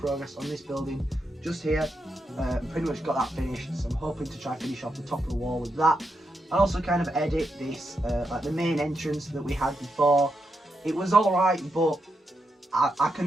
on this building just here, pretty much got that finished. So I'm hoping to try finish off the top of the wall with that, and also kind of edit this, like the main entrance that we had before. It was alright, but I can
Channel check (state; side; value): normal; both; correlation 0.84